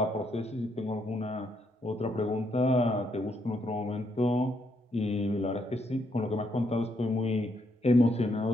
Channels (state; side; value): normal; both; correlation 0.76